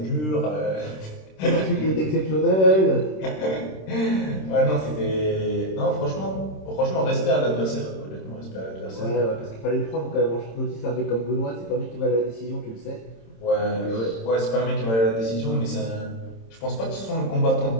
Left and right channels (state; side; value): late; right; 26 ms